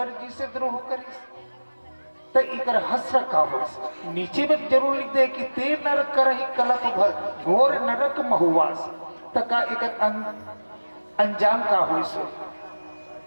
जी से द्रोह करिस। तो इकर हस्र का हो नीचे में जरूर लिख दे कि ते नरक करहि कलप भर घोर नरक महुवास। तो का इकर अंजाम का हो सो।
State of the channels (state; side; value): inverted; both; correlation -1.00